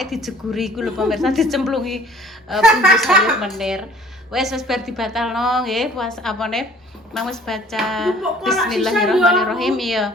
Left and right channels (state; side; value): normal; both; correlation 0.53